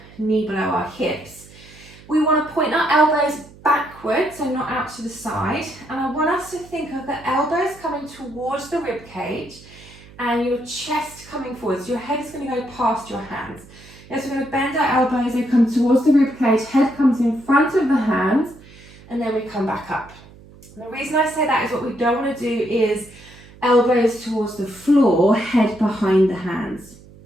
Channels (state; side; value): noise; right; hum, 22 dB below the sound